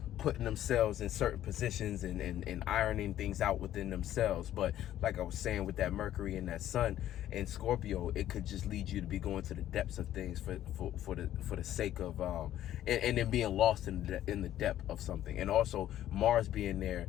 putting themselves in certain positions and ironing things out within themselves. But like I was saying, with that Mercury and that Sun in Scorpio, it could just lead you to be going to the depths of things for the sake of and then being lost in the depth of something. And also Mars being there,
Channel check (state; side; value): quieter; right; 12.4 dB